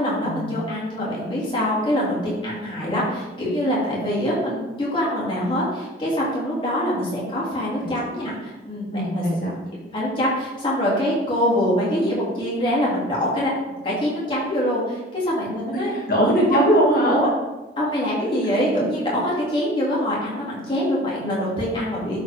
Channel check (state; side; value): normal; both; correlation 0.41